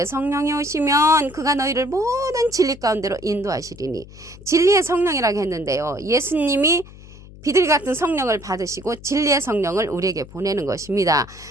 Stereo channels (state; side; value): noise; left; hum, 19 dB below the sound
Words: 성령이 오시면 그가 너희를 모든 진리 가운데로 인도하시리니 진리의 성령이라고 했는데요. 예수님이 비둘기 같은 성령을 받으시고 진리의 성령을 우리에게 보내는 것입니다.